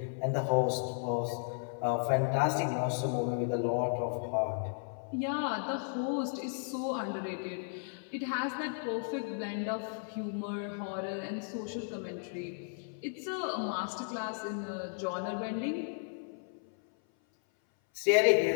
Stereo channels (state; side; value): silent; right; 55 dB below the other